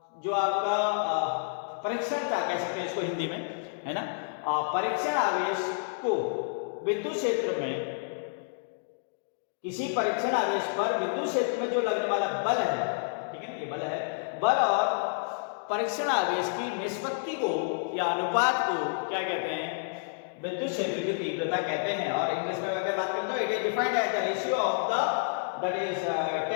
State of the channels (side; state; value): right; silent; digital silence